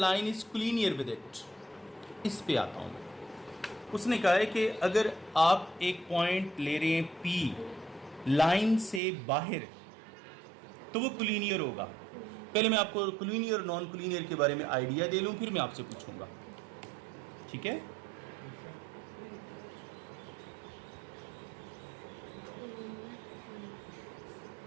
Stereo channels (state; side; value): drops out; left; at 9.0 s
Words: is collinear with it. इस पे आता हूँ। उसने कहा है कि अगर आप एक पॉइंट ले रहे हैं P लाइन से बाहर तो वो कोलिनियर होगा। पहले मैं आपको कोलिनियर और नॉन कोलिनियर के बारे में आइडिया दे लूँ, फिर मैं आपसे पूछूंगा, ठीक है?